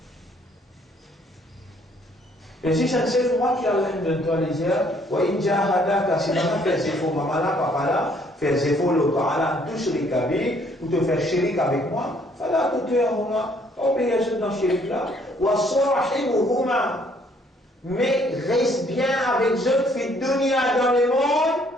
Et si c'est un moi qui a l'air de toi les yeux, ou inja hadaka, si maman fait ses faux, maman là, papa là, fait ses faux, le parla, tout chérik avec, ou te faire chérik avec moi, fala tout tu es moi, obéir dans chérik là, ou à sorahi ou huma, mais reste bien avec eux, fait dunia dans le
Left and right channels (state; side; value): normal; both; correlation 0.64